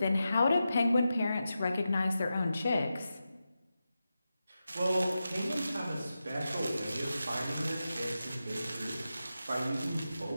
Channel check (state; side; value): inverted; both; correlation -0.91